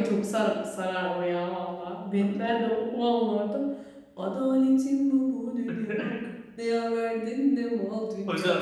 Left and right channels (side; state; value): both; identical; correlation 1.00